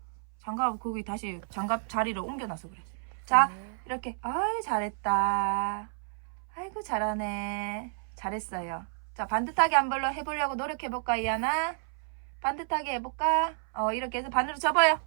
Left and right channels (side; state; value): left; silent; 58 dB below the other